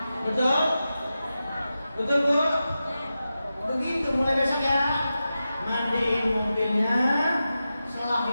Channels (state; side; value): inverted; both; correlation -0.92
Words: Betul? Betul bu? Begitu mulai besok ya. Mandiin mobilnya,